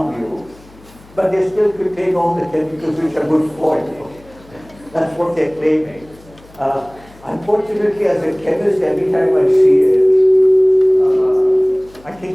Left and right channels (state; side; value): noise; left; hum, 25 dB below the sound